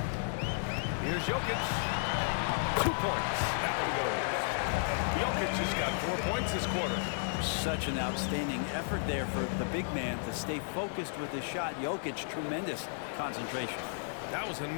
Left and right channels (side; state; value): right; silent; digital silence